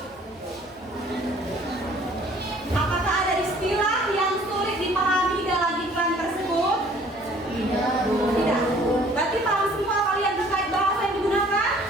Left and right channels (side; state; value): both; normal; correlation 0.55